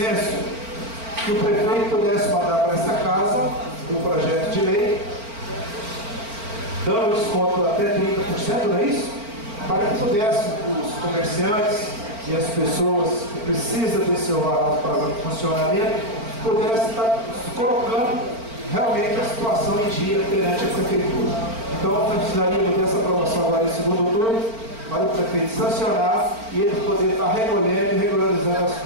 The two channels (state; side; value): late; left; 4.4 ms